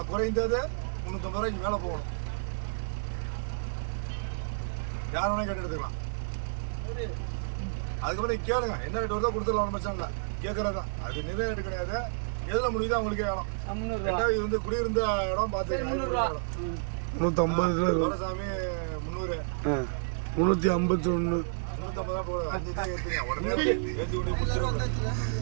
குறைந்தது 350 ரூபாய்க்கு மேல போகணும். யார் வேணா கேட்டு எடுத்துக்கலாம். அதுக்கப்புறம் கேளுங்க, என்ன ரேட் வருதோ கொடுத்துடலாம், பிரச்சனை இல்லை. கேட்கறதுதான், அது நிறைய ரேட்டு கிடையாது. எதுல முடியுதோ அவங்களுக்கே வேணும். இது வந்து குடியிருந்த இடம் பார்த்துக்கலாம். 350 சாமி 300 351 350 தான் போடுது. 5 தான் ஏற்றுங்க, உடனே ஏற்றி கொண்டு முடிச்சிருவாங்க.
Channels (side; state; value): left; silent; digital silence